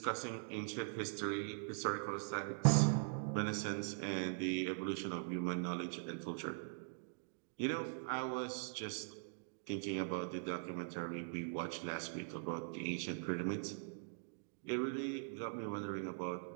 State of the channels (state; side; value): silent; left; digital silence